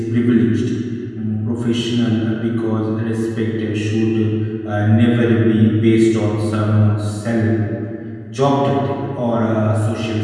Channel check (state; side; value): identical; both; correlation 1.00